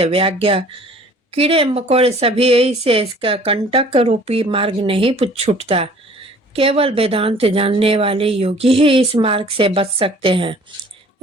व्याज्ञ, कीड़े मकोड़े सभी से इसका कंटक रूपी मार्ग नहीं छूटता। केवल वेदांत जानने वाले योगी ही इस मार्ग से बच सकते हैं।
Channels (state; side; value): normal; both; correlation 0.52